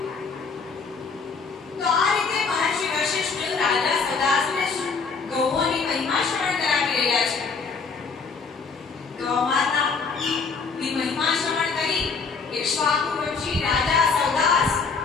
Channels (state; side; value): quieter; right; 4.9 dB